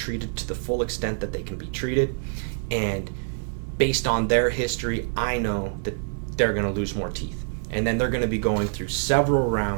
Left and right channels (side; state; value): left; silent; digital silence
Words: to the full extent that they can be treated, and based on their history, I know that they're going to lose more teeth. And then they're going to be going through several